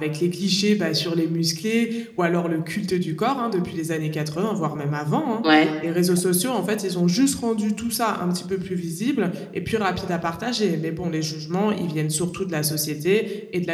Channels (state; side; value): identical; both; correlation 1.00